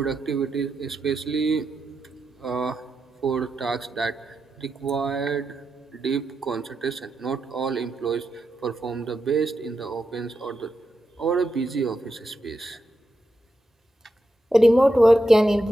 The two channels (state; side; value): normal; both; correlation 0.87